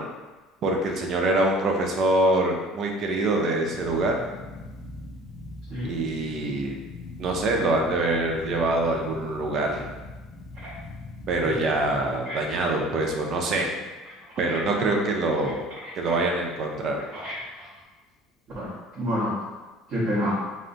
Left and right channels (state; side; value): normal; both; correlation 0.47